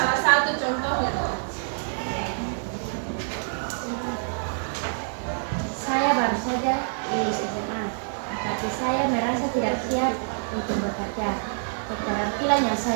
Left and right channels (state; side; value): silent; left; 56 dB below the other